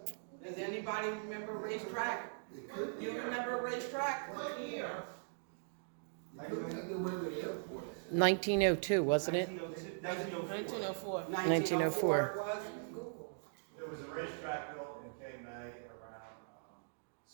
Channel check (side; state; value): left; silent; digital silence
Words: Does anybody remember racetrack? You remember racetrack? Here. Look at the way the airport is. 1902, wasn't it? 1904. 1904. 1904 it was? There was a racetrack built in Cape May around